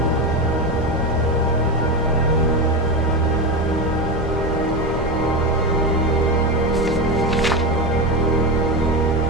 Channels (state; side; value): normal; both; correlation 0.17